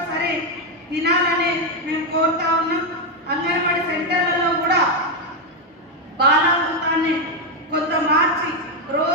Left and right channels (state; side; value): normal; both; correlation 0.05